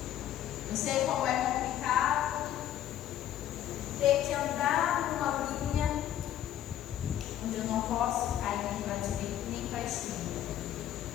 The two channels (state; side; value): quieter; right; 11.6 dB